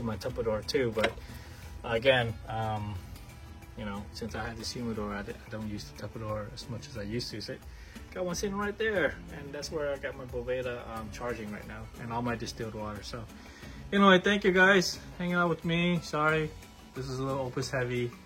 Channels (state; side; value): identical; both; correlation 1.00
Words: my Tupperware too. But again, you know, since I had this humidor, I don't use the Tupperware as much as I used to. So got one sitting right there, and that's where I got my Boveda charging right now, and all my distilled water. So anyway, thank you guys hanging out with me. Sorry, this is a little Opus heavy